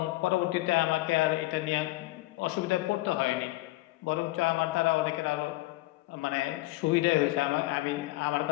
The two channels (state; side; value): quieter; right; 19.4 dB